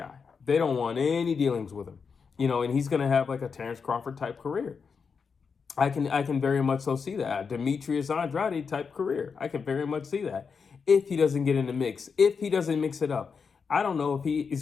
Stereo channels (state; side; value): quieter; right; 5.7 dB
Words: They don't want any dealings with him. And he's going to have like a Terrence Crawford type career. I can very much so see that. Demetrius Andrade type career. I can very much see that. If he doesn't get in the mix, if he doesn't mix it up. I don't know if